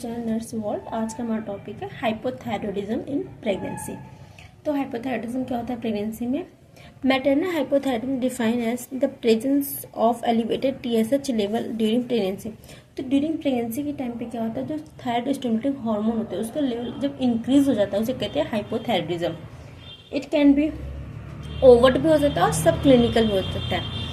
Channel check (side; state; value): both; identical; correlation 1.00